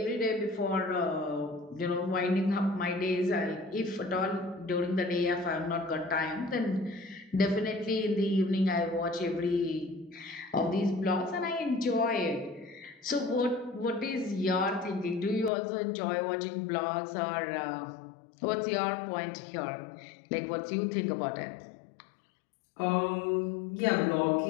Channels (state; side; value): drops out; right; at 15.5 s